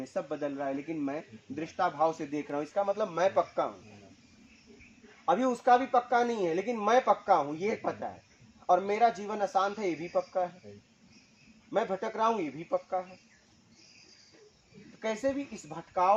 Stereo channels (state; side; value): identical; both; correlation 1.00